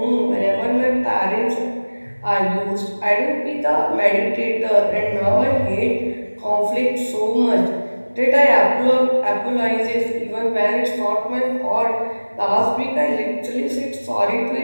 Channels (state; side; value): inverted; both; correlation -1.00